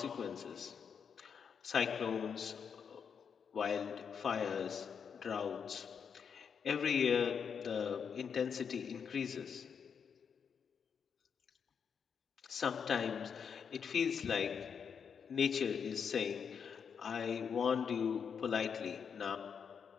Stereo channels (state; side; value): quieter; right; 6.8 dB